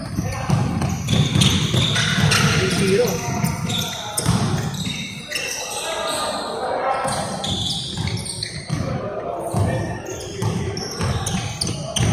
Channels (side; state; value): both; identical; correlation 1.00